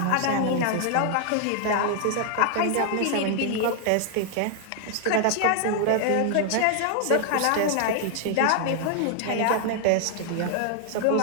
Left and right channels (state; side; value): different; both; correlation 0.00